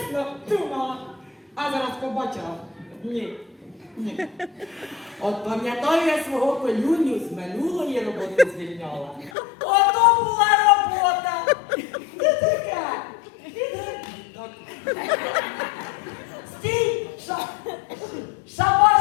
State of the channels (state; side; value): drops out; right; at 9.3 s